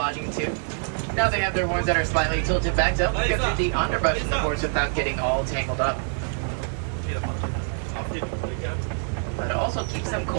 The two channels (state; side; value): silent; left; 56 dB below the other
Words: too. Now they have their horns that are slightly tilted back to help get through the underbrush in the forest without getting all tangled up. But it also keeps them